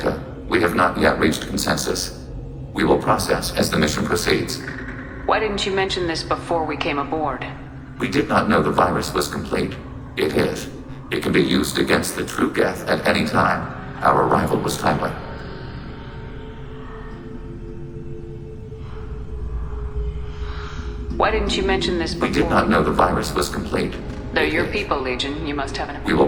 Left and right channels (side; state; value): both; identical; correlation 1.00